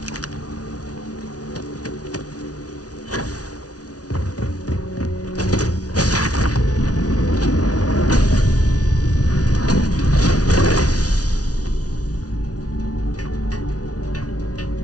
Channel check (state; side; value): late; right; 0.68 ms